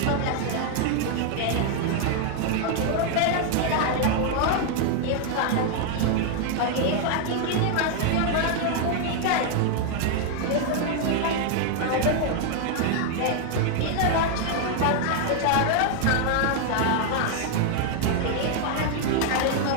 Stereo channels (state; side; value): different; both; correlation 0.00